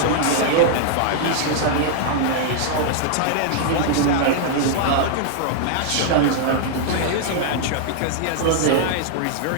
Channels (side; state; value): both; different; correlation -0.01